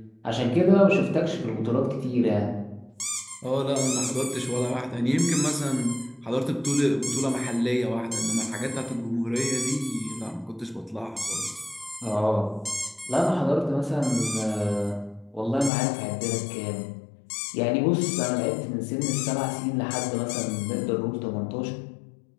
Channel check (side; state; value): right; drops out; at 15.7 s